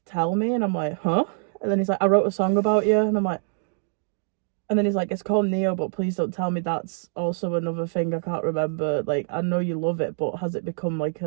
tell me. And I'm like, huh? And then he's like, I wrote a song about you. And I'm like, and then he's like, it's called Neo, but please don't tell me that's also another thing I can't remember. Like, I know you love it, but has it become like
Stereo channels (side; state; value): left; silent; digital silence